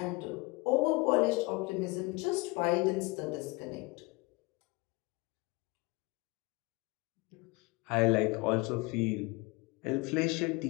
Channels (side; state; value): right; quieter; 25.2 dB